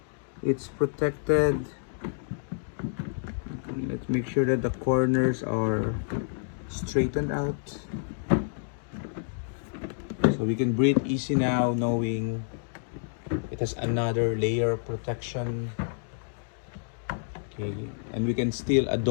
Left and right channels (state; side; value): silent; right; digital silence